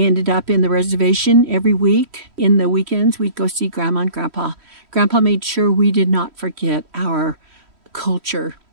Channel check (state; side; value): late; left; 3.1 ms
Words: up in the reservation every week. In the weekends, we'd go see Grandma and Grandpa. Grandpa made sure we did not forget our culture.